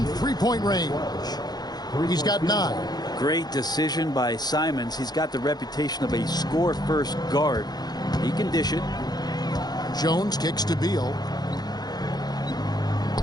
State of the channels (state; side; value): late; right; 0.19 ms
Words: three-point range. He's got 9. Great decision by Simons. He's got the reputation of a score-first guard. He can dish it. Jones kicks to Beal.